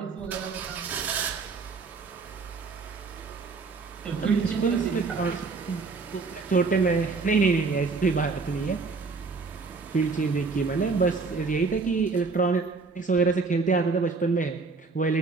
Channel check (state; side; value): quieter; left; 4.3 dB